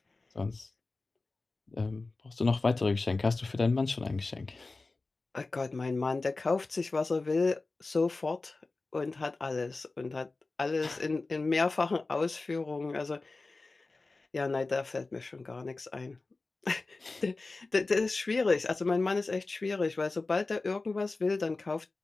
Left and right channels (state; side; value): quieter; right; 3.5 dB